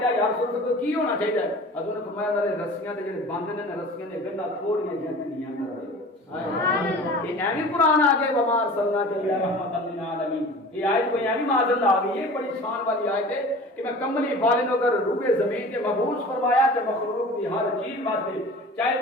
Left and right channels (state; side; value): normal; both; correlation 0.40